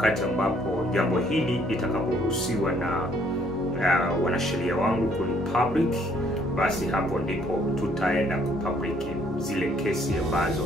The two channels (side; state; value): both; normal; correlation 0.65